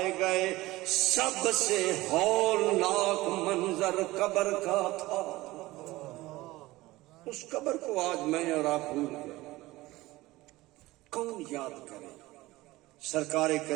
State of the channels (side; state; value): left; quieter; 18.8 dB